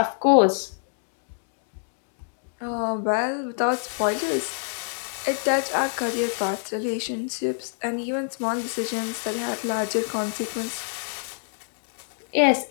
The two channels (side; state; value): right; silent; digital silence